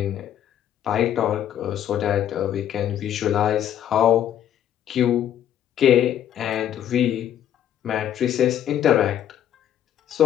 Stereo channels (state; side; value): quieter; right; 10.5 dB